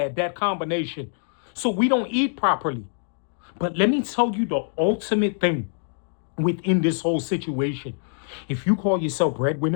that combination. So we don't eat properly. But let me tell you the ultimate thing within this whole situation. If you call yourself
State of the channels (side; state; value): right; silent; digital silence